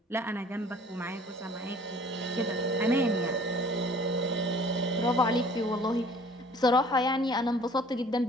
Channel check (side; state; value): both; normal; correlation 0.52